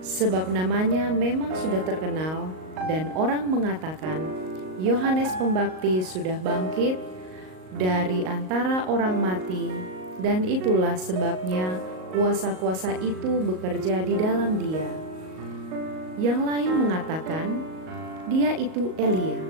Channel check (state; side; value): late; left; 38 ms